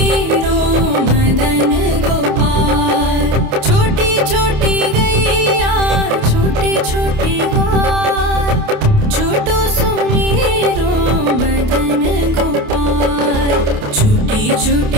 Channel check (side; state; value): left; late; 28 ms